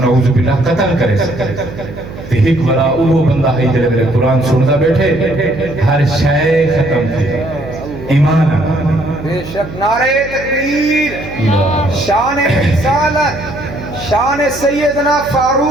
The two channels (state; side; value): noise; right; hum, 13 dB below the sound